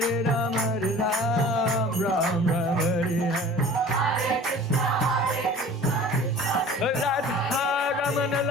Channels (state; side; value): normal; both; correlation 0.43